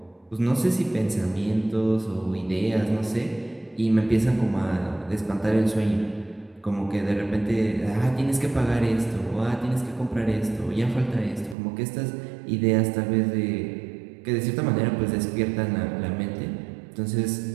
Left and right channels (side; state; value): left; drops out; at 11.6 s